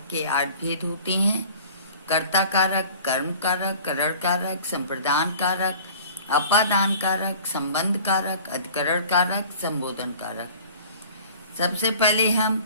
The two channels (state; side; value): inverted; both; correlation -0.45